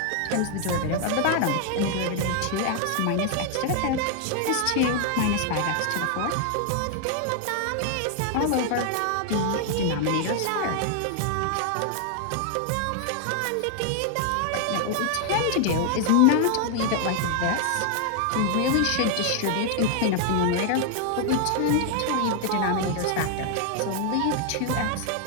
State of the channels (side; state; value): both; different; correlation 0.00